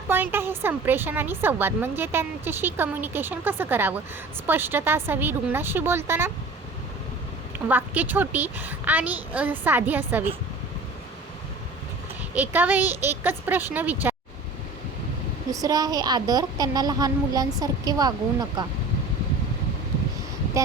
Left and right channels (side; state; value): left; quieter; 3.2 dB